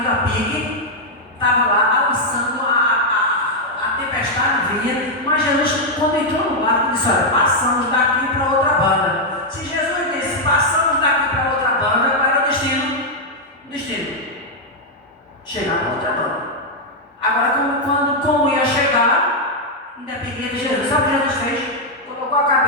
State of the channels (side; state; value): both; normal; correlation -0.01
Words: a pique, estava lá avançando, a tempestade vinha, mas Jesus, quando entrou no barco, disse: olha, passamos daqui para outra banda. Se Jesus disse, passamos daqui para outra banda, qual era o destino? Chegar na outra banda. Agora, como ia chegar, independente de Jesus, sabe o que Jesus fez? Colocou a